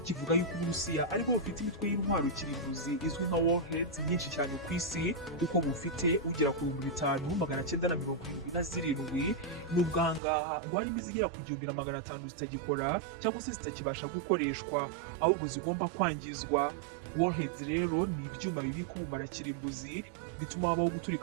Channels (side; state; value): left; drops out; at 10.2 s